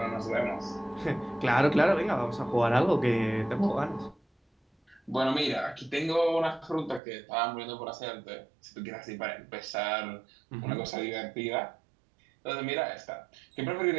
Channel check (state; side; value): drops out; left; at 7.0 s